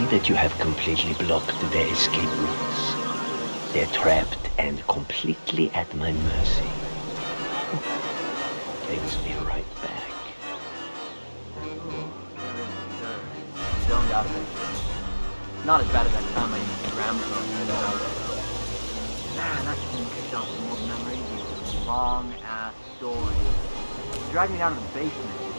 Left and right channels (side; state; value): both; inverted; correlation -1.00